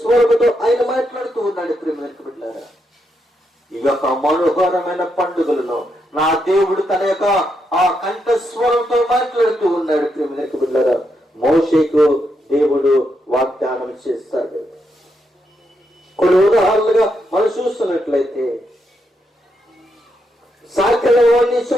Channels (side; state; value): both; normal; correlation 0.81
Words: ఆయన మాట్లాడుతూ ఉన్నాడు. ప్రేమలకు బిడ్డలారా, ఈ యొక్క మనోహరమైన పండుగలలో నా దేవుడు తన యొక్క ఆ కంఠస్వరంతో మాట్లాడుతూ ఉన్నాడు. ప్రేమలకు బిడ్డలారా, మోషేకు దేవుడు వాగ్దానం చేస్తాడు. కొన్ని ఉదాహరణలుగా మనం చూస్తున్నట్లయితే సాకలవాణ్ణి